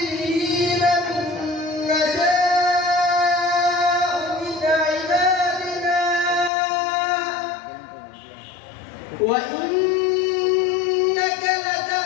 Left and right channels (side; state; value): right; drops out; at 6.5 s